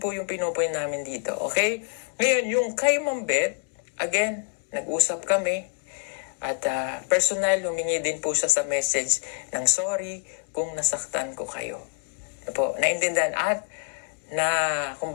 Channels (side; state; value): right; silent; 61 dB below the other